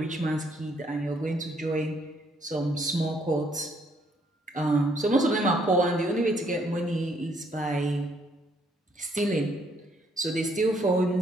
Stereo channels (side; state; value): both; normal; correlation 0.69